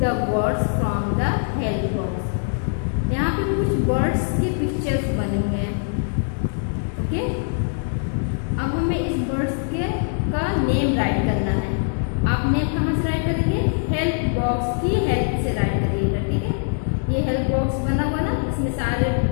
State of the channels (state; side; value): silent; right; digital silence